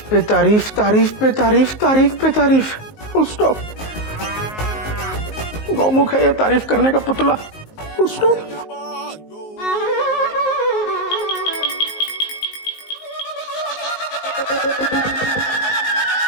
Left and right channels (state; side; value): late; right; 19 ms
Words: पे तारीफ, तारीफ पे तारीफ, तारीफ पे तारीफ। Full stop. गौमुख है ये तारीफ करने का पुतला। Full stop.